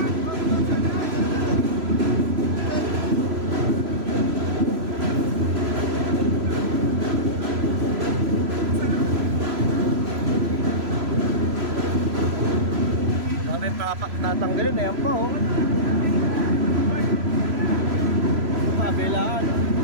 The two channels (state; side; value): late; left; 3.0 ms